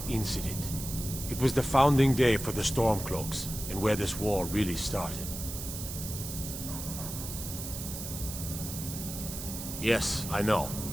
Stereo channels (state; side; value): noise; right; hiss, 8 dB below the sound